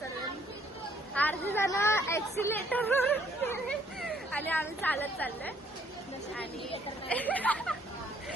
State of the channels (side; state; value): both; normal; correlation 0.65